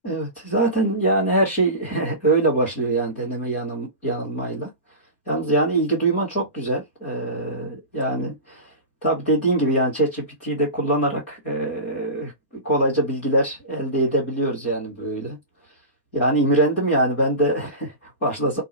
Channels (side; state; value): right; late; 4.2 ms